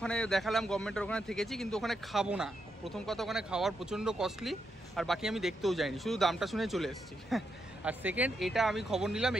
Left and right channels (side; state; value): both; normal; correlation 0.82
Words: দেখালাম, গভর্নমেন্টের ওখানে থেকেছি, কিন্তু ওখানে খাবো না। প্রথম কথা, ওখানে খাওয়ার প্রচণ্ড কস্টলি, আর বাকি আমি দেখতেও যাইনি, শুধু দামটা শুনে চলে এসেছি। আর সেকেন্ড, এটা আমি খবর নিলাম